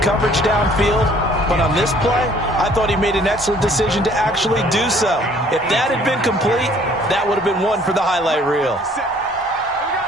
downfield, but on this play, I thought he made an excellent decision to actually do so. If that had been complete, that would have been one for the highlight reel.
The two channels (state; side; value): normal; both; correlation 0.58